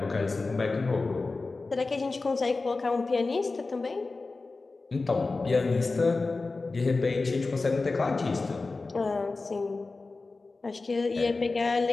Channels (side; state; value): right; quieter; 3.7 dB